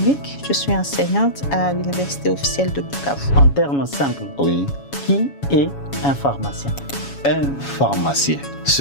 Je suis enseignante à l'Université officielle de Bukavu. En termes simples, Oui. qui est un pharmacien? Un pharmacien,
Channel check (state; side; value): late; right; 7.2 ms